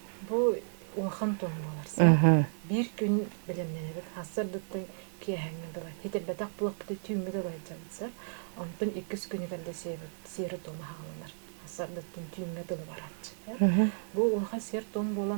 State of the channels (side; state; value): left; silent; digital silence